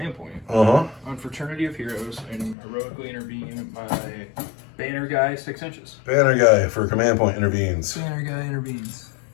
point on Fraternity of Heroes and heroically intervene my banner guy 6 inches. Banner guy for command point intervenes. Banner guy intervenes.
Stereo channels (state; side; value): drops out; right; at 2.6 s